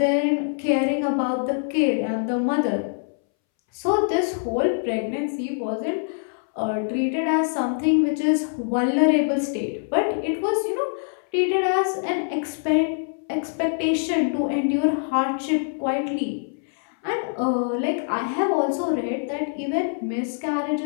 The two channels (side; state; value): right; silent; 63 dB below the other